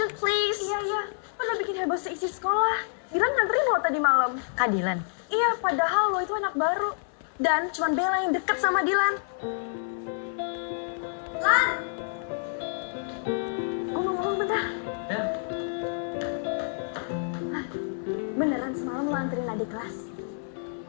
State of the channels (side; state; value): right; silent; 59 dB below the other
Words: please. Iya. Lo udah bikin heboh seisi sekolah. Dylan nganterin lo tadi malam. Kak Dylan. Iya, padahal lo itu anak baru. Dan cuman Bella yang deket sama Dylan. Lan! Gue mau ngomong bentar. Ya. Beneran semalam lo anterin adik kelas?